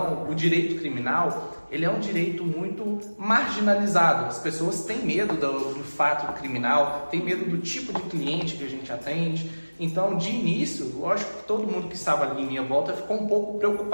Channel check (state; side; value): inverted; both; correlation -1.00